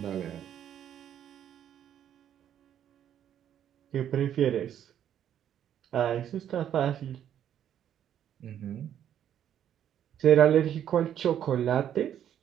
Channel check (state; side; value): quieter; left; 10.1 dB